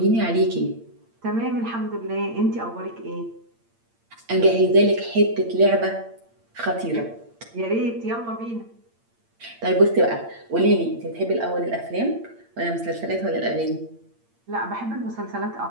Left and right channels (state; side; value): late; left; 8.7 ms